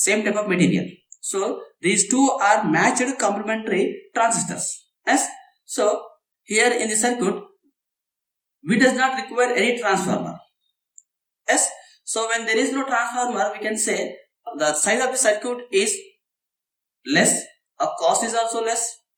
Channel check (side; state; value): both; identical; correlation 1.00